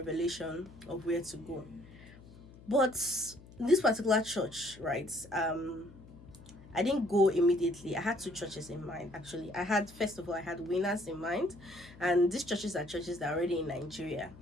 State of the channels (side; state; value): left; noise; hum, 20 dB below the sound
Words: of where to go. But this particular church, right, I didn't go immediately. I had 2 churches in mind, actually. First of all, I had Winners in mind, and these churches are churches that are already in Nigeria.